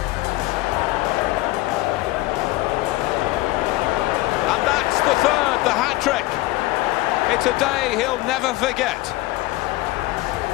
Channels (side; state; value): right; quieter; 19.0 dB